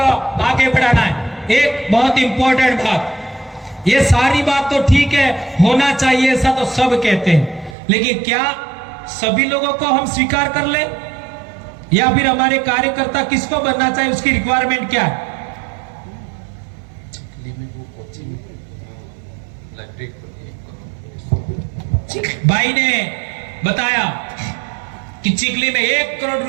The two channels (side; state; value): left; drops out; at 7.8 s